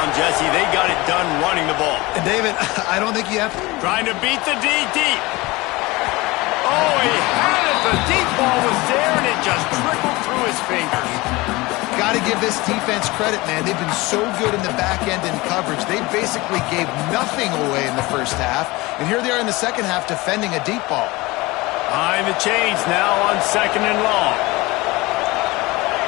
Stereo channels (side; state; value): right; quieter; 21.9 dB